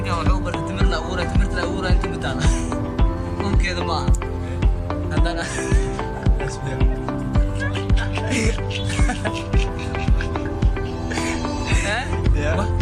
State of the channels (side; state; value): both; identical; correlation 1.00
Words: وحوبر تمرنا أورا أنت متانا ممكن كذا ما عندنا ها